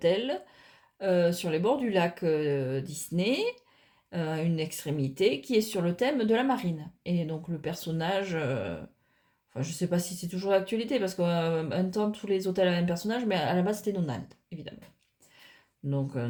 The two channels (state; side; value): identical; both; correlation 1.00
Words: sur les bords du lac Disney, une extrémité qui est sur le thème de la marine. Et donc le personnage, enfin je sais pas si c'est toujours d'actualité parce qu'un temps tous les hôtels avaient un personnage, mais à la base c'était Donald, évidemment. Donc